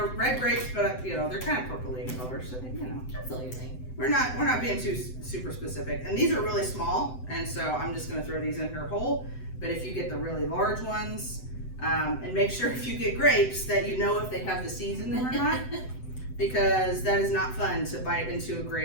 red grapes, but they're kind of purpley in color. So Absolutely. we're not being too super specific. And these are really small, and so I'm just going to throw these in here whole. But if you get the really large ones, and make sure if you get grapes that you know if they have the seeds in them or not. Because that is not fun to bite into a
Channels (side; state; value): right; late; 7.9 ms